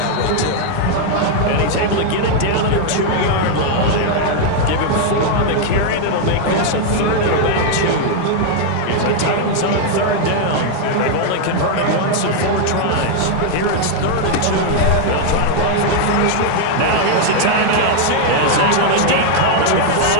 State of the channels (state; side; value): different; both; correlation 0.00